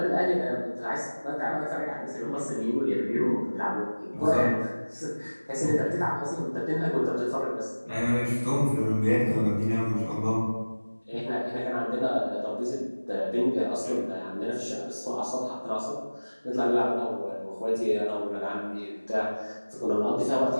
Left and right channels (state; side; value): inverted; both; correlation -1.00